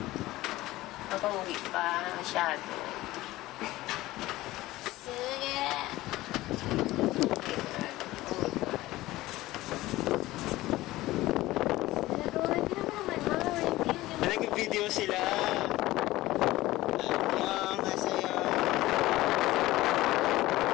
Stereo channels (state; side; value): quieter; right; 17.5 dB